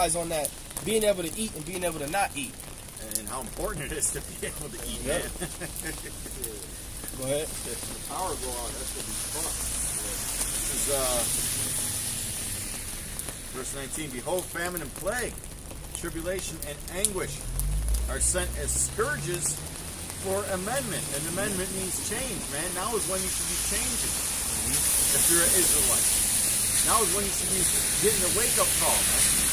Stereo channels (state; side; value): identical; both; correlation 1.00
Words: on that, being able to eat and being able to not eat. And how important it is to be able to eat, Yep. man. Go ahead. The power go out. That's gonna be fun. This is verse 19. Behold, famine and plague, tribulation and anguish are sent as scourges for amendment. And amendment means change, man. Now is when you should be changing. If you're an Israelite. Now is when you should be getting a wake-up call, man.